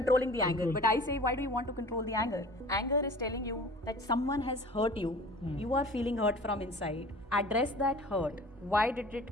the anger, but I say, why do you want to control the anger? Anger is telling you that someone has hurt you. You are feeling hurt from inside. Address that hurt. Why did it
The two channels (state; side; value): normal; both; correlation 0.43